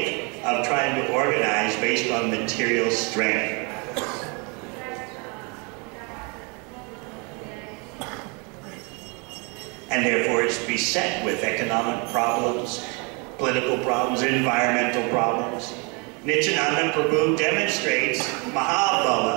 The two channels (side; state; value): left; quieter; 32.0 dB